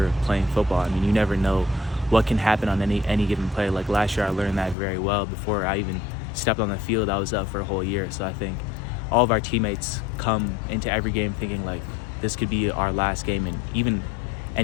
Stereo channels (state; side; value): drops out; right; at 4.8 s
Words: playing football. I mean, you never know what can happen on any given play. Like last year, I learned that very well. Before I even stepped on the field, I was up for a whole year. So I think all of our teammates come into every game thinking like this could be our last game, and even